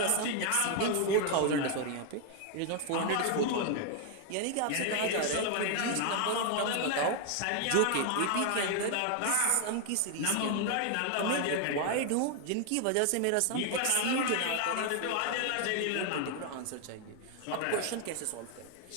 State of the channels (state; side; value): different; both; correlation 0.00